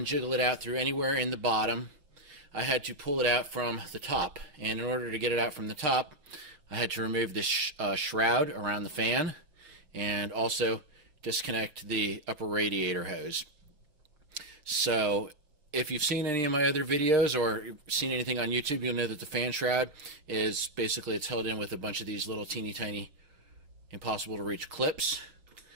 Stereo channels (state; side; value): late; left; 6.5 ms